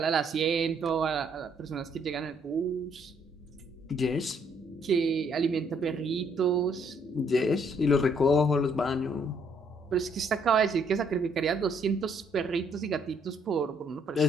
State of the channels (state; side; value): normal; both; correlation 0.68